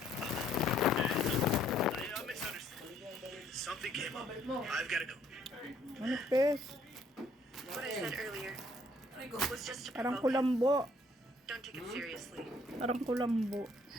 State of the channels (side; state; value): both; normal; correlation 0.64